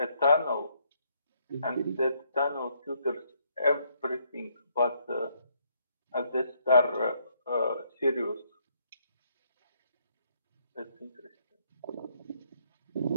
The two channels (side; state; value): both; inverted; correlation -0.71